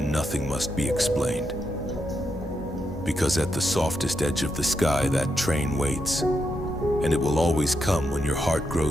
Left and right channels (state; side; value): normal; both; correlation 0.83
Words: nothing must be explained. Because at the softest edge of the sky, that train waits, and it will always come when your heart